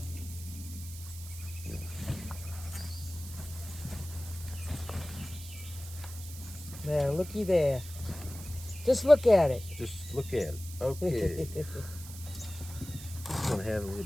There, looky there. Just look at it. Just look at it. Okay. This one had a little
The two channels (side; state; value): right; noise; hiss, 14 dB below the sound